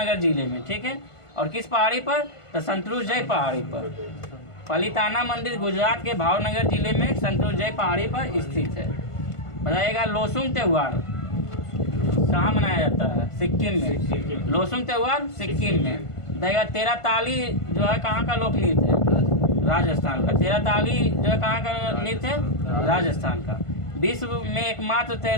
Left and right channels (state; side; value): late; right; 1.5 ms